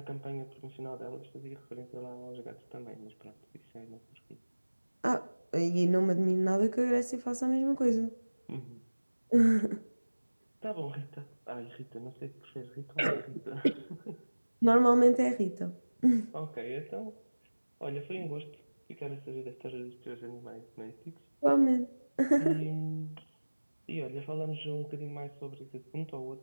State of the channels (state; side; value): inverted; both; correlation -1.00